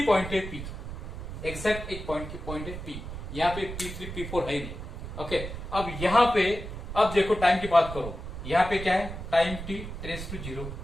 पॉइंट है P, एग्जैक्ट एक पॉइंट है P, यहाँ पे P3 P4 है ही नहीं। ओके, अब यहाँ पे अब देखो टाइम की बात करो, यहाँ पे क्या है, टाइम t टेंड्स टू 0,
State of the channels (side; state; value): right; noise; rumble, 8 dB below the sound